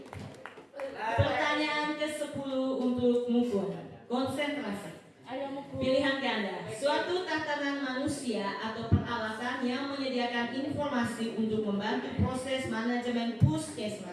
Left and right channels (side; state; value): both; identical; correlation 1.00